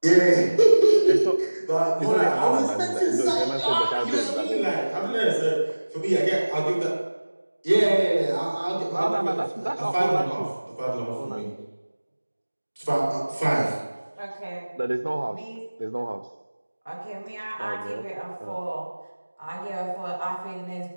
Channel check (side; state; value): both; inverted; correlation -1.00